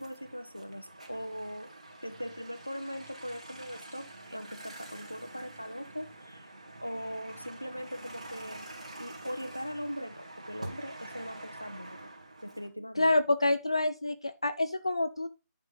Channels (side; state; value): both; inverted; correlation -0.90